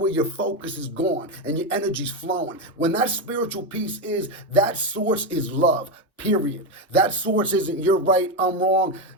your focus is gone and your energy's flowing, when that spiritual piece is, that source is love, period. That source isn't you're right, I'm wrong,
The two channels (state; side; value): normal; both; correlation 0.10